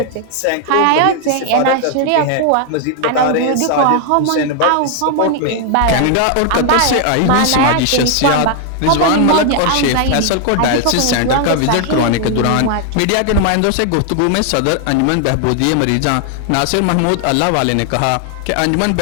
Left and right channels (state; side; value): different; both; correlation 0.00